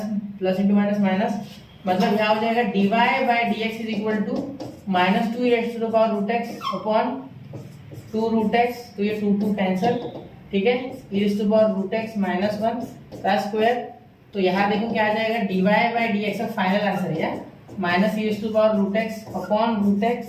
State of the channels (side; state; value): both; identical; correlation 1.00